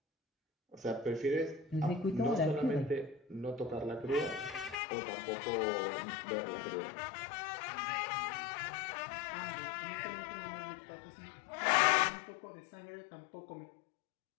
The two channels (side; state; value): right; drops out; at 4.8 s